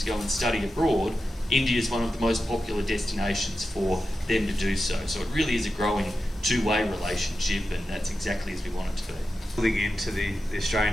go and study abroad, India is one of the most popular destinations for them to do so. So it really is a growing two-way relationship, and that's exactly as we want it to be. Building into the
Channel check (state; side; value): normal; both; correlation 0.91